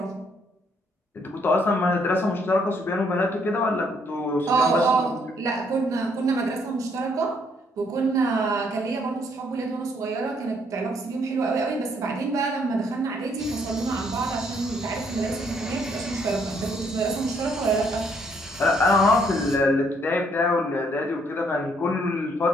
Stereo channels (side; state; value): both; normal; correlation 0.69